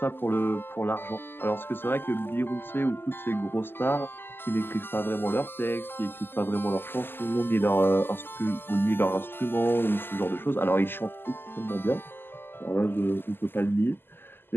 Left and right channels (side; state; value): right; late; 0.10 ms